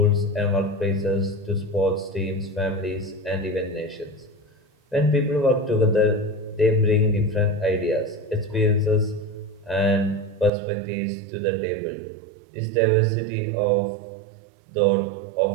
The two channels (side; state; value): left; drops out; at 10.5 s